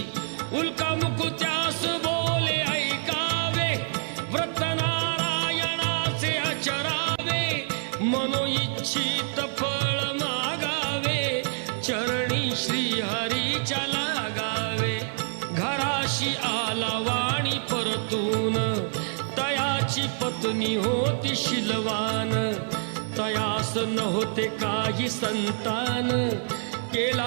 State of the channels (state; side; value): silent; left; 60 dB below the other